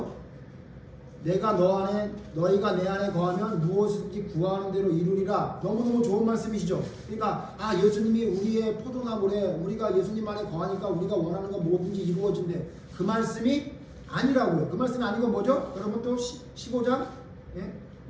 내가 너희가 내 안에 거하면 무엇이든지 구하는 대로 이루리라. 너무너무 좋은 말씀이시죠? 그러니까 예수님이 우리의 포도나무래. 우리가 예수님 안에 거하니까 우리가 원하는 거 뭐든지 이루어진대. 그 말씀이 아니라고요. 그 말씀이 아니고 뭐죠? 여러분 또 15장, 예?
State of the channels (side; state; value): both; identical; correlation 1.00